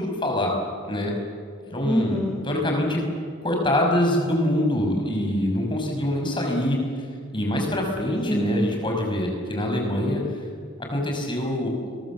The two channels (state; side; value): normal; both; correlation 0.59